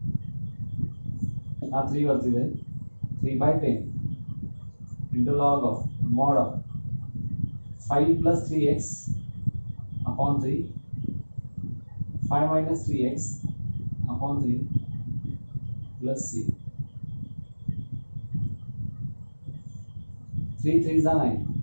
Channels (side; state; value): both; inverted; correlation -1.00